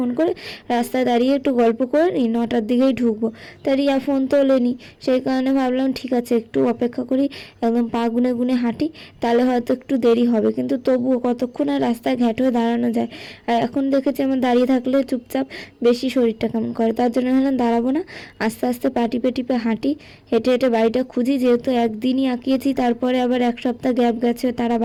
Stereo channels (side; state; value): both; identical; correlation 1.00